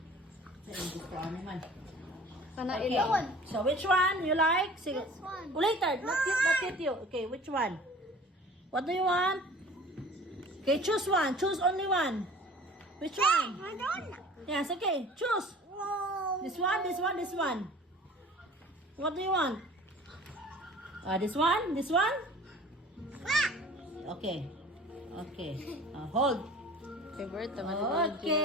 Sa gusto ano man. Kana Okay. ilaw. So which one you like? Sige. This one. Later, not yet you. Okay, which one? What do you want? Okay, choose one. Choose only one. Which one? Yes, okay. Choose. This one, this one, this one. What do you want? This one? This one? Okay. Okay. Hold. Favorite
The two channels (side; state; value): both; normal; correlation 0.46